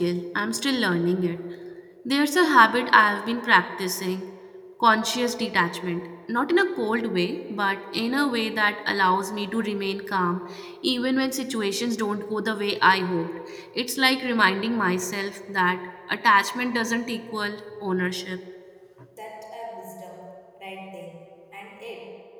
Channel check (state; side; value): identical; both; correlation 1.00